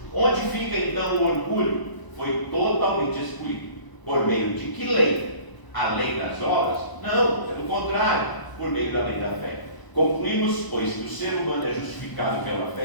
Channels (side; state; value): right; late; 1.0 ms